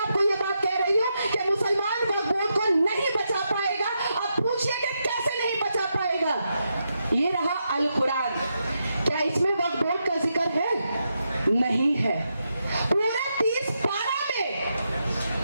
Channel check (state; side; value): inverted; both; correlation -0.84